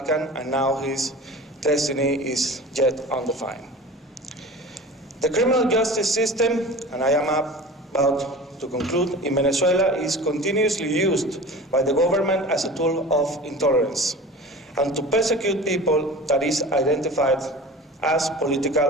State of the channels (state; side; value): normal; both; correlation 0.36